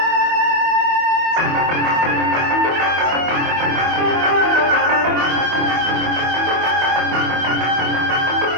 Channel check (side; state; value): left; late; 24 ms